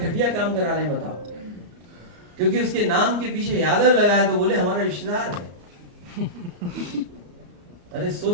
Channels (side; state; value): left; late; 34 ms